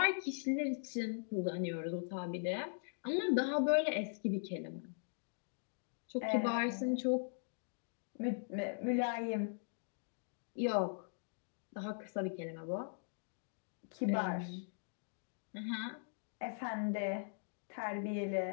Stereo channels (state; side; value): silent; right; digital silence